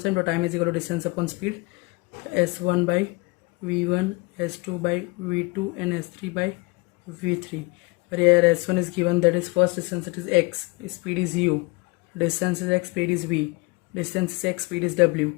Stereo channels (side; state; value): right; quieter; 25.6 dB